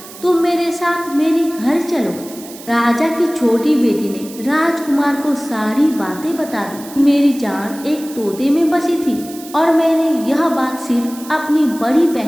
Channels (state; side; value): noise; right; hiss, 17 dB below the sound